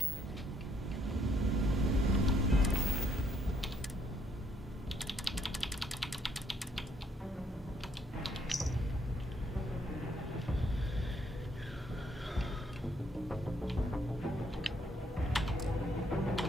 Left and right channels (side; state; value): both; normal; correlation 0.70